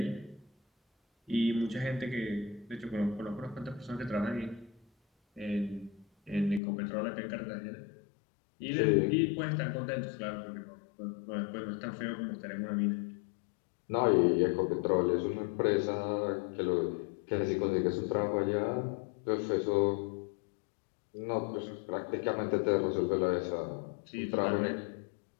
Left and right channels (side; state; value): right; drops out; at 6.6 s